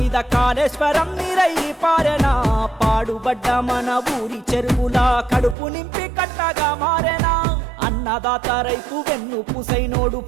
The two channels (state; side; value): drops out; left; at 5.6 s